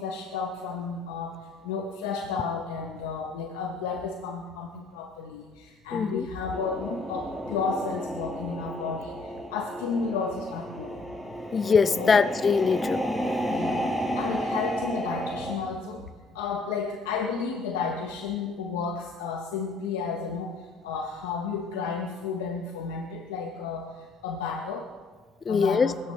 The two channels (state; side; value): quieter; right; 3.9 dB